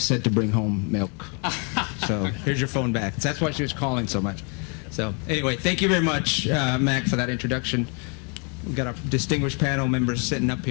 to bring home milk. So here's your phone back. That's why she was calling so much. So anyway, thank you very much, Mac, for that introduction. We've got our distinguished panel members sitting up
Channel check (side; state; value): right; quieter; 36.5 dB